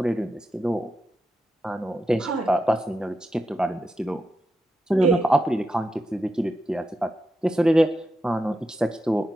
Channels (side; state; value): both; normal; correlation 0.87